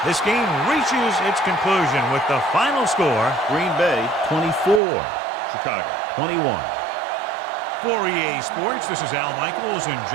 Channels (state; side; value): drops out; left; at 4.8 s